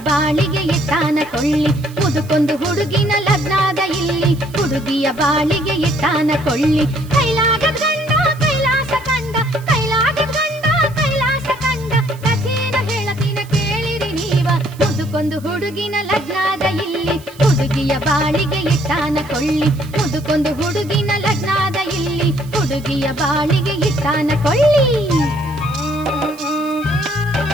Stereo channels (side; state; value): right; noise; hiss, 23 dB below the sound